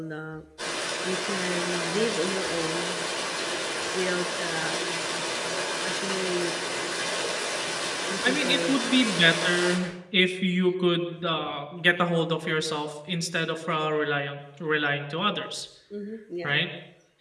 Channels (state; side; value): identical; both; correlation 1.00